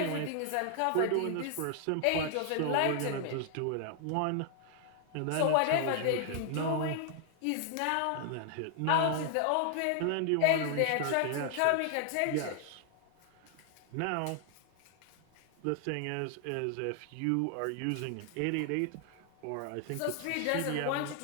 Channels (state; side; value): different; both; correlation 0.00